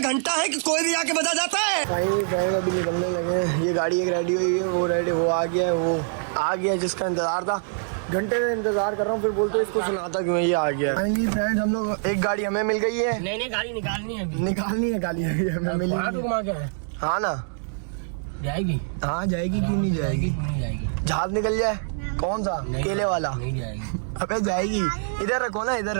घंटा है कि कोई भी आके बजा जाता है। भाई अभी निकलने लगे हैं। ये गाड़ी एक रेडी हुई है, वो आ गया है, वो आ गया जिसका इंतजार था। घंटे से इंतजार कर रहा हूँ, फिर बोलते इसको सुनाता क्यों है, ये आ गया। फाइनली फ्रेंड्स हम लोग, एक गाड़ी हमें मिल गई है। नहीं गाड़ी निकालनी है, निकालनी है गाड़ी हमें मिली। हाँ ना जाएगी। हाँ जाएगी, क्यों नहीं जाएगी। जहाज निकल जाए कौन सा, केले वाला। नहीं जाएगी। अबे जाएगी, इधर रखो ना, इधर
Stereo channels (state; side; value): silent; left; digital silence